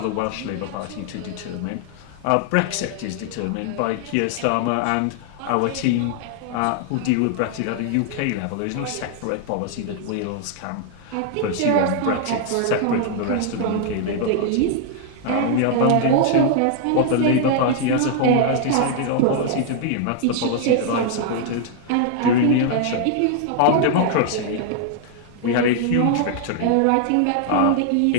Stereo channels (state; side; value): different; both; correlation 0.00